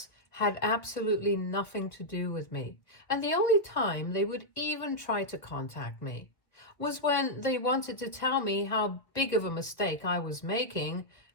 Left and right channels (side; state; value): right; late; 1.3 ms